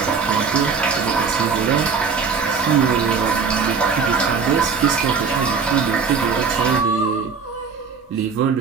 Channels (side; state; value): left; quieter; 5.5 dB